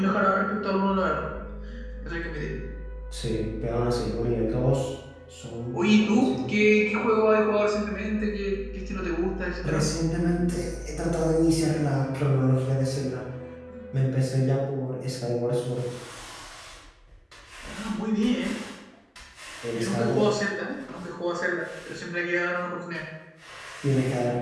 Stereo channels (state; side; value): identical; both; correlation 1.00